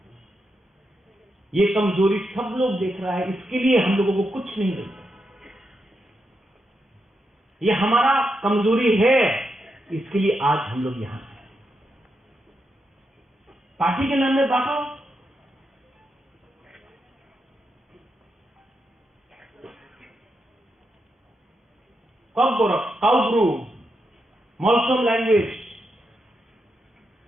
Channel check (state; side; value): normal; both; correlation 0.84